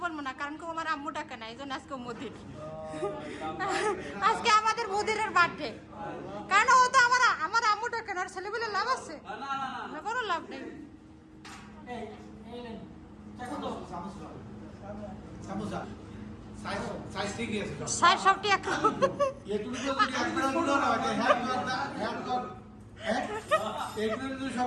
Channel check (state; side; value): identical; both; correlation 1.00